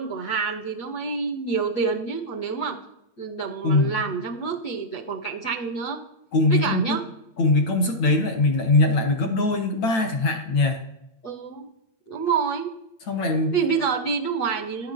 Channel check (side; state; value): right; late; 9.0 ms